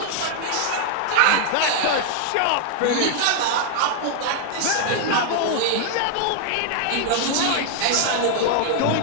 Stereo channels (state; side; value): different; both; correlation 0.00